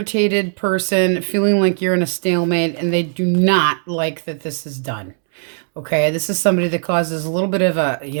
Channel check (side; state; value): left; silent; 67 dB below the other